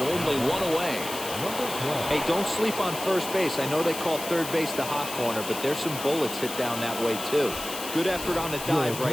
1 away. Hey, don't sleep on first base. I know they call third base the hot corner, but there's some bullets hit down that way, too. Good effort on the dive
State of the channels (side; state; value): left; noise; hiss, 8 dB below the sound